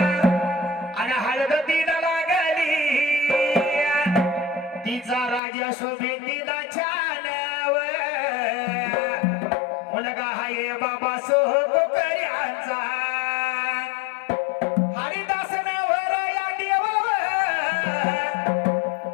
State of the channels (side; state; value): right; drops out; at 5.4 s